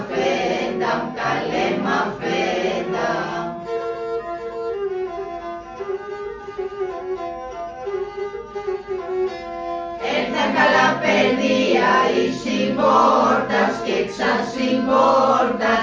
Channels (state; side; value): identical; both; correlation 1.00